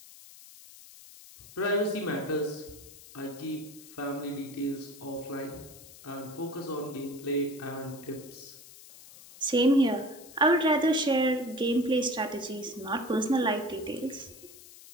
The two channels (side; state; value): left; noise; hiss, 19 dB below the sound